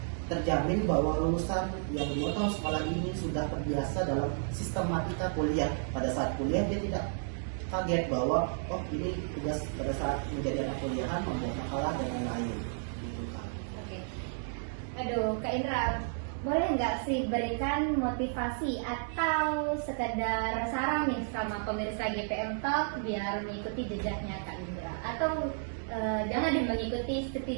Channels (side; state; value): left; silent; digital silence